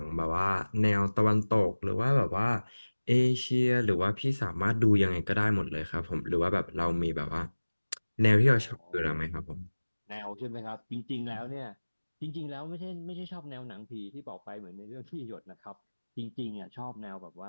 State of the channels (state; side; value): inverted; both; correlation -1.00